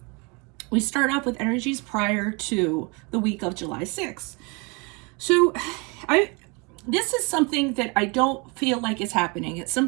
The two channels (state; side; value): quieter; left; 30.0 dB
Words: we start off with energies prior to the week of July 6th. So this is something that I don't feel like is happening. It's